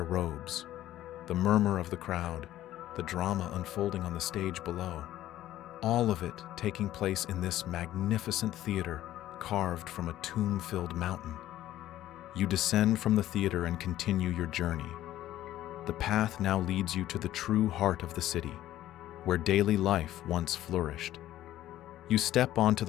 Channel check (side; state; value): right; quieter; 13.7 dB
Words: robes, the murmur of the crowd, the drama unfolding on the stage below, all of it taking place in this magnificent theater carved from a tomb-filled mountain. You descend from the theater and continue your journey. The path now leads you to the true heart of the city, where daily life once flourished. You step onto